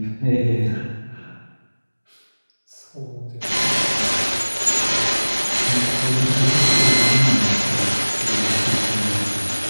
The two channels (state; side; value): inverted; both; correlation -1.00